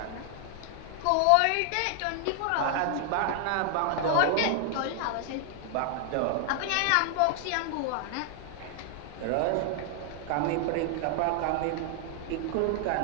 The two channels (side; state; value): both; different; correlation 0.00